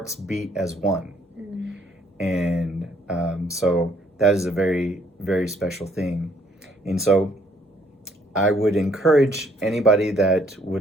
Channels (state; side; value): normal; both; correlation 0.65